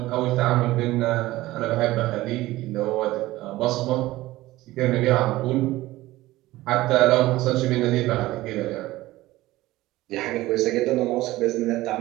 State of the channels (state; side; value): quieter; left; 17.4 dB